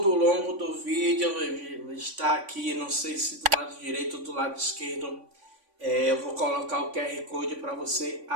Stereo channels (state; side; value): late; left; 3.5 ms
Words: o longo do vídeo está aqui, não sei se do lado direito ou do lado esquerdo, eu vou colocar o QR Code para você